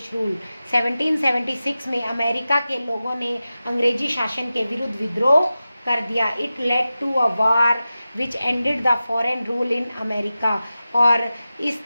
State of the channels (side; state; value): both; inverted; correlation -0.94